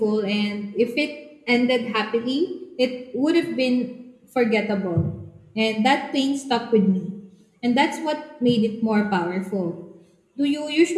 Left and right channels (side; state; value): both; identical; correlation 1.00